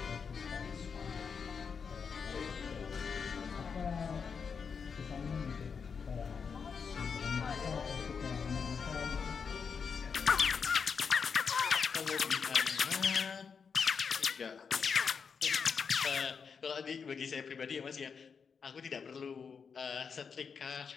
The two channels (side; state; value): right; quieter; 6.0 dB